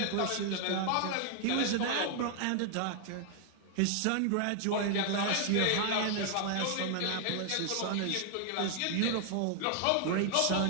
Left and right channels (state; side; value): different; both; correlation 0.00